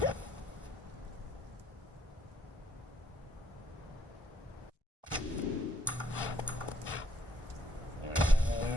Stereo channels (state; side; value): normal; both; correlation 0.70